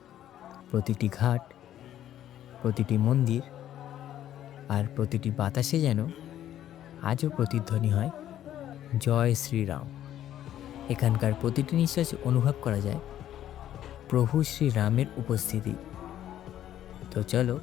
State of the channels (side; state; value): right; quieter; 11.7 dB